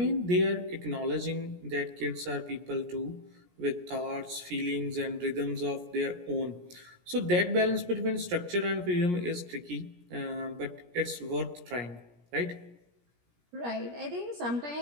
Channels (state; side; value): late; left; 17 ms